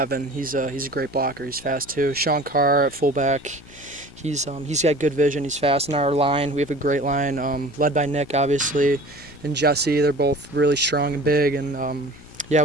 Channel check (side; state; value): both; normal; correlation 0.43